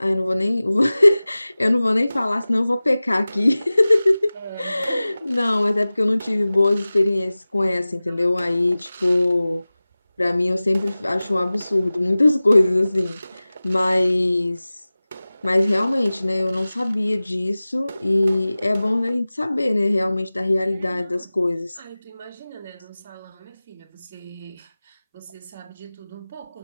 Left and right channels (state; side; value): inverted; both; correlation -0.98